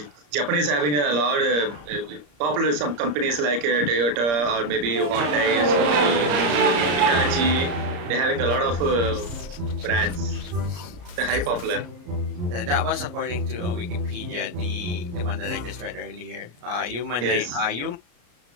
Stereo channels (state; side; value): late; left; 34 ms